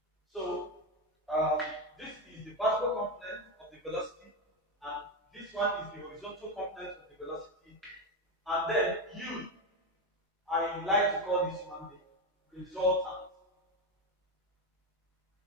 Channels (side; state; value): both; normal; correlation 0.12